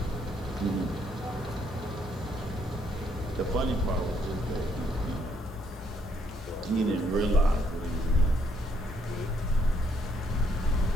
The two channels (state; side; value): normal; both; correlation 0.71